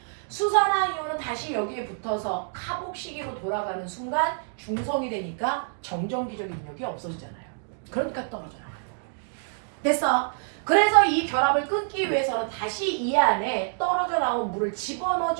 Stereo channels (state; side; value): silent; left; digital silence